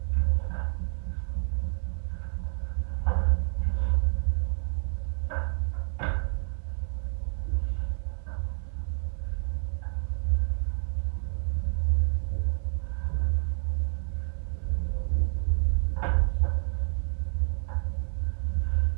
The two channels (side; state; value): left; silent; digital silence